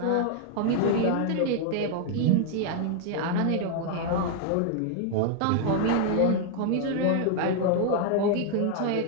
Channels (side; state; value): both; different; correlation 0.00